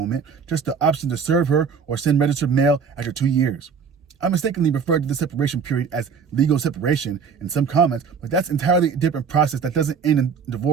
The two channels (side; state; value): left; quieter; 6.1 dB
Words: just the option to serve her or send registered mail after 2 years. I mistakenly referred to the separation period as legal separation in some comments, but that's entirely a different process that doesn't end in